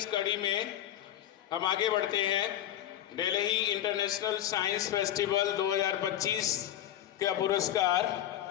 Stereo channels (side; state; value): right; quieter; 12.0 dB